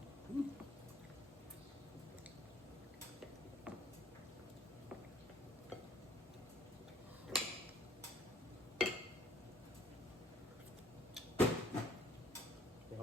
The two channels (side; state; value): both; normal; correlation 0.60